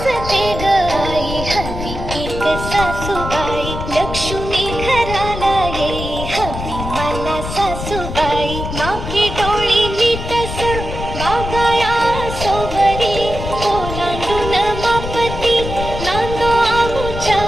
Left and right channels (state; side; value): noise; left; rumble, 7 dB below the sound